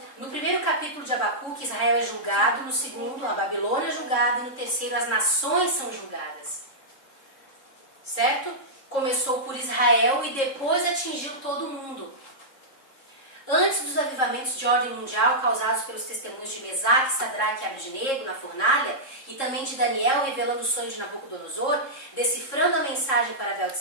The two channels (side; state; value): right; late; 3.7 ms